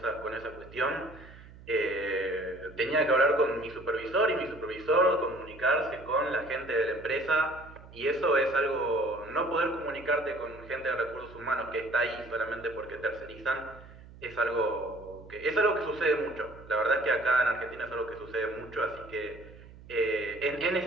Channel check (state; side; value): noise; right; hum, 19 dB below the sound